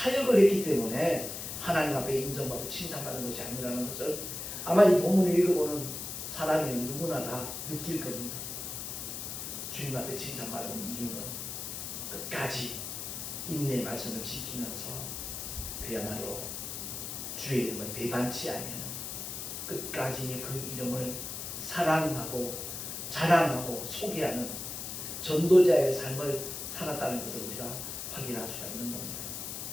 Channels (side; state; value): left; noise; hiss, 6 dB below the sound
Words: 했기 때문에 하나님 앞에 인정받고 칭찬받은 것이 아니라는 것을 아마 이 본문을 읽어보는 사람이면 누구나 다 느낄 겁니다. 주님 앞에 칭찬받은 이유는 끝까지 인내의 말씀을 지키면서 그야말로 주의 이름을 배반치 아니하는, 끝까지 그 이름을 사랑하고 자랑하고 소개하는 전도자의 삶을 살았다는 것을 우리가 확인할 수가 있는 겁니다.